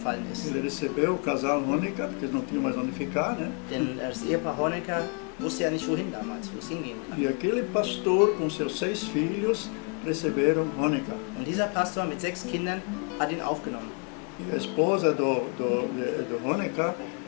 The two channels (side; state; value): right; quieter; 37.5 dB